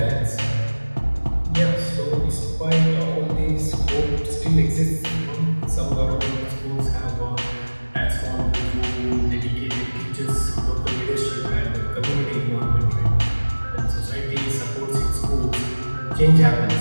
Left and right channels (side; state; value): both; inverted; correlation -1.00